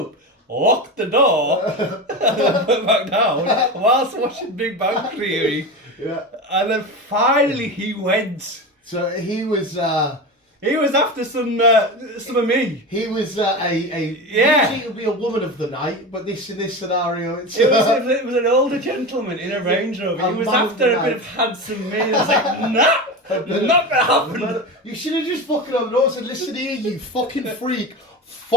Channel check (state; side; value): normal; both; correlation 0.24